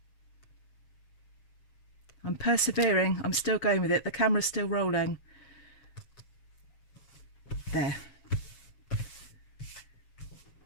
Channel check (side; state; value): right; late; 7.3 ms